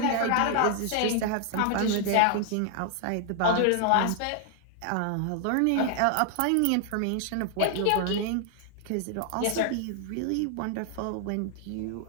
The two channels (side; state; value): both; different; correlation 0.00